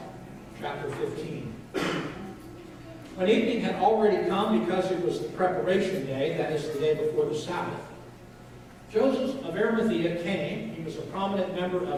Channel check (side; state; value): both; identical; correlation 1.00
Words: chapter 15. When evening had already come, because it was the preparation day, that is the day before the Sabbath, Joseph of Arimathea came. He was a prominent member